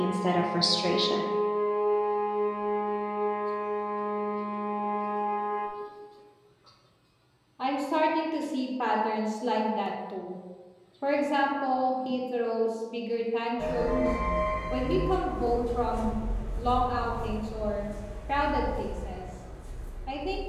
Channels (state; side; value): identical; both; correlation 1.00